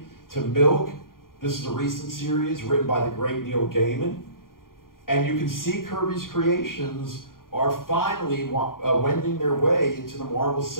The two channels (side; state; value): right; late; 0.91 ms